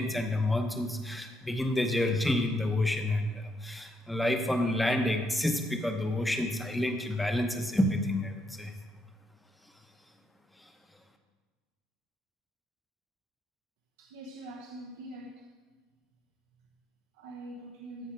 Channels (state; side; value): normal; both; correlation 0.78